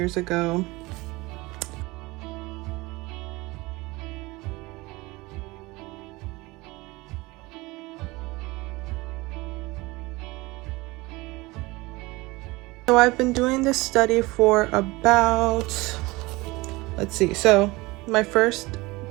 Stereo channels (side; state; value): left; quieter; 22.2 dB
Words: ago. So I've been doing this study for about, let's see, so my first